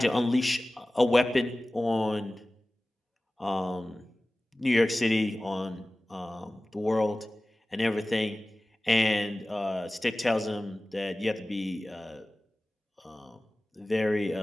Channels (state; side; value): normal; both; correlation 0.97